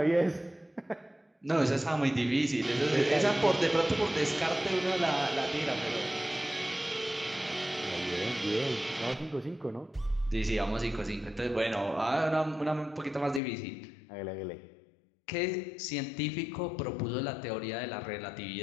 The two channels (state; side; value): drops out; right; at 13.4 s